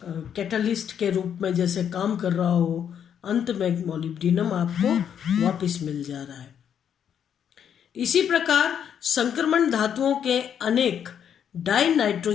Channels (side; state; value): right; quieter; 8.6 dB